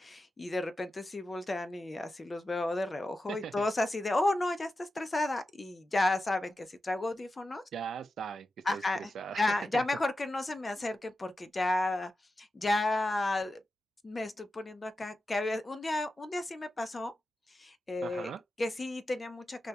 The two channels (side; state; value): both; normal; correlation 0.91